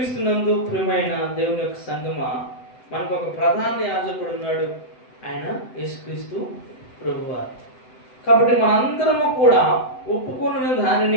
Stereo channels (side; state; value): right; late; 7.9 ms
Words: ప్రియమైన దేవుని యొక్క సంగమా, మనకు ఒక ప్రధాన యాజకుడు ఉన్నాడు, ఆయన యేసుక్రీస్తు ప్రభువారు. కాబట్టి మనందరము కూడా ఒప్పుకున్న